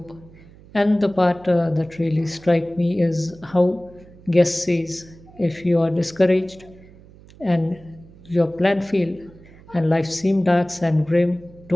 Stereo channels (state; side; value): noise; right; hum, 23 dB below the sound